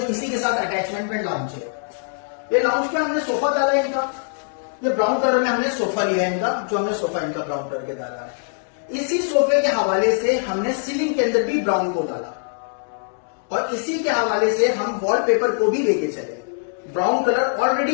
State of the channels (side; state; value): right; silent; 64 dB below the other